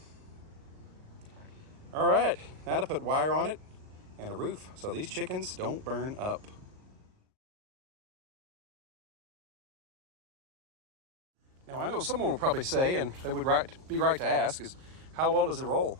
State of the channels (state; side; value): late; left; 38 ms